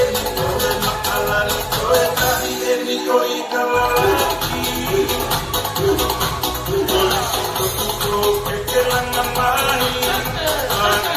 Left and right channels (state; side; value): identical; both; correlation 1.00